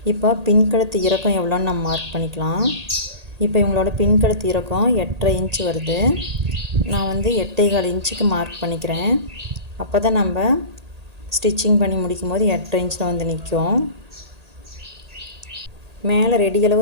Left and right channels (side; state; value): left; late; 1.8 ms